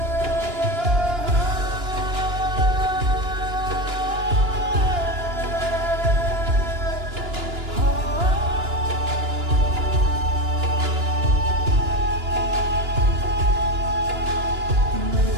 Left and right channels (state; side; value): late; left; 2.9 ms